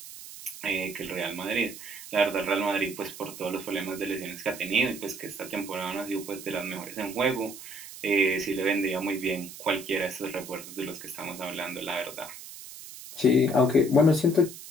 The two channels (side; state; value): right; noise; hiss, 14 dB below the sound